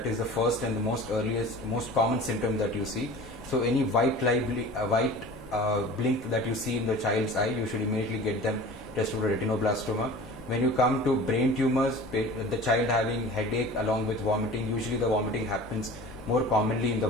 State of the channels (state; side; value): normal; both; correlation 0.40